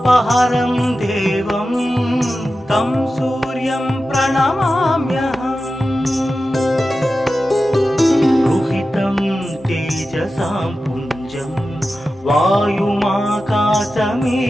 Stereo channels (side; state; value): both; normal; correlation 0.93